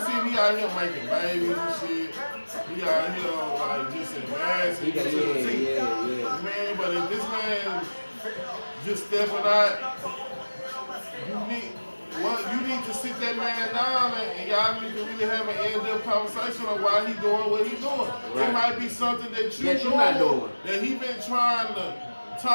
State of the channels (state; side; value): inverted; both; correlation -1.00